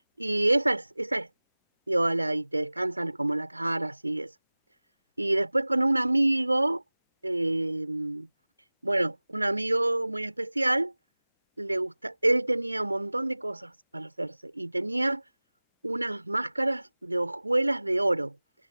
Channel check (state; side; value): inverted; both; correlation -1.00